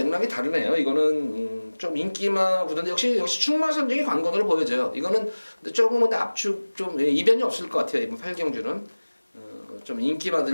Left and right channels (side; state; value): both; inverted; correlation -1.00